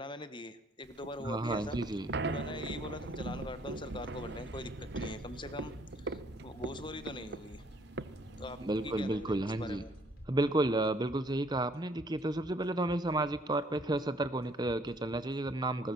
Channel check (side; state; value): both; normal; correlation 0.63